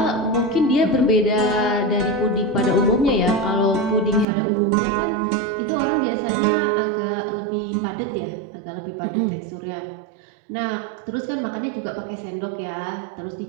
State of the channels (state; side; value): drops out; left; at 4.2 s